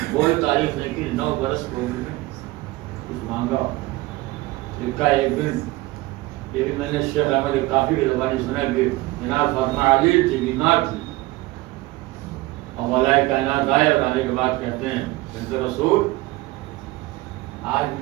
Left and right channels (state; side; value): quieter; left; 19.9 dB